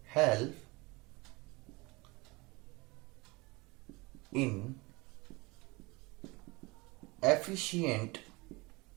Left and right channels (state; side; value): quieter; left; 24.9 dB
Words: help in efficient